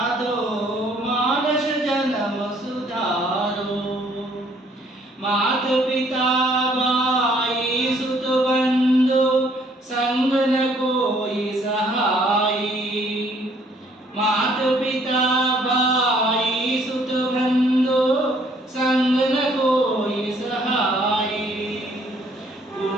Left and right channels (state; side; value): normal; both; correlation 0.63